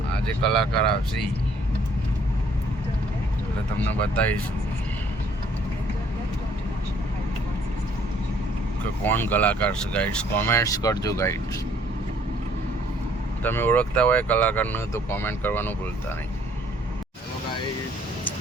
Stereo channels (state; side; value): normal; both; correlation 0.62